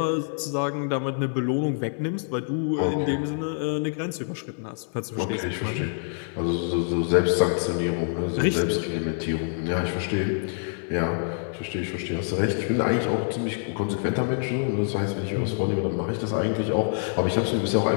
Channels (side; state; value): right; silent; digital silence